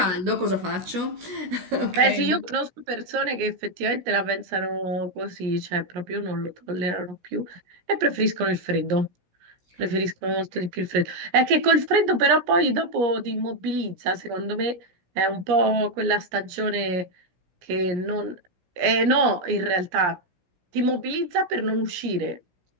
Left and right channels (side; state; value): left; late; 17 ms